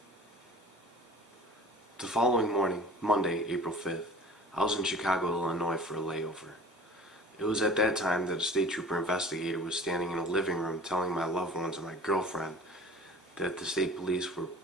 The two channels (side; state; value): both; normal; correlation 0.43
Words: The following morning, Monday, April 5th, I was in Chicago, Illinois for a layover. It was at that time that a state trooper investigator was standing in a living room telling my loved ones and my girlfriend that the state police were